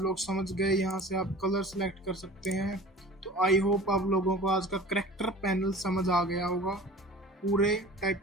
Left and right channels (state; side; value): normal; both; correlation 0.41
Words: लोग समझ गए। यहाँ से आप कलर सेलेक्ट कर सकते हैं। तो आई होप आप लोगों को आज का करैक्टर पैनल समझ आ गया होगा। पूरे